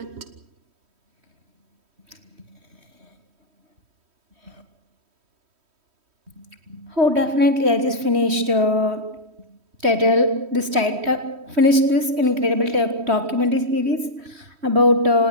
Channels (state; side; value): late; left; 3.1 ms